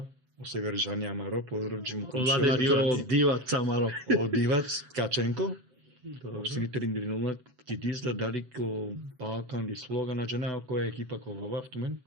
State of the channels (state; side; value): late; left; 7.9 ms